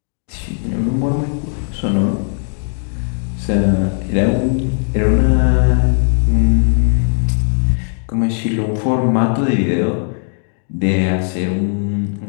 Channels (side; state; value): right; silent; 56 dB below the other